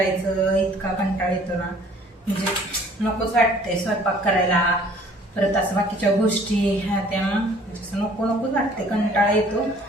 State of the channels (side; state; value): both; normal; correlation 0.55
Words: इतका कंटाळ येतो ना, म्हणजे नकोच वाटतंय स्वयंपाक करायला, परत असं बाकीच्या गोष्टी ह्या त्या म्हणजे नकोच वाटते, कंटाळा येतो.